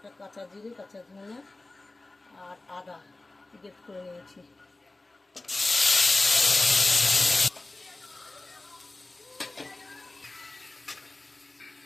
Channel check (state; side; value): quieter; right; 3.0 dB